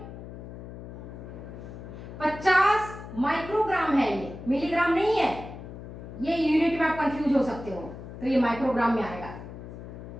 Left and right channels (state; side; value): noise; left; hum, 12 dB below the sound